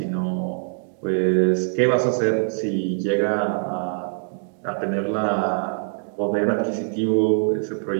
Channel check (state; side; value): silent; left; digital silence